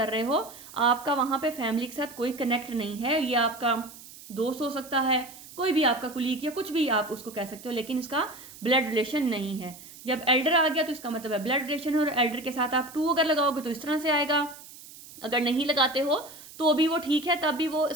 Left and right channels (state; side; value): noise; right; hiss, 18 dB below the sound